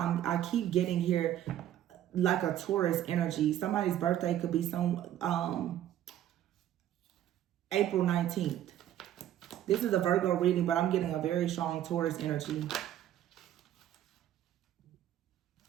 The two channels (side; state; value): left; quieter; 11.8 dB